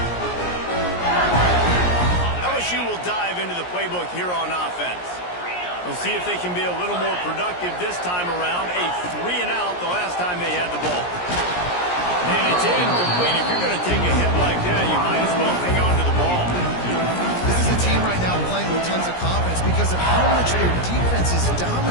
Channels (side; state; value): right; late; 17 ms